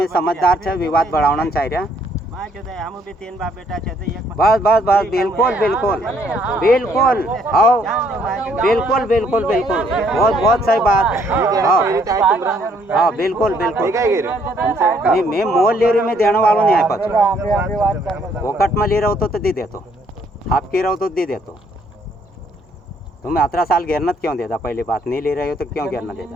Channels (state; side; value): normal; both; correlation 0.67